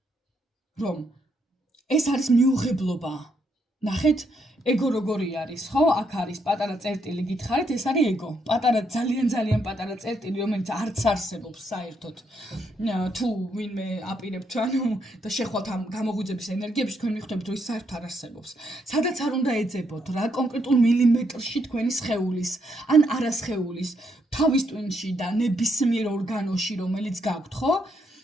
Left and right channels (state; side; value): normal; both; correlation 0.76